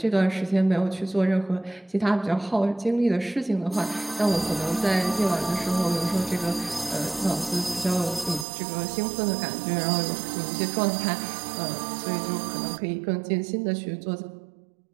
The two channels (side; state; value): left; drops out; at 8.5 s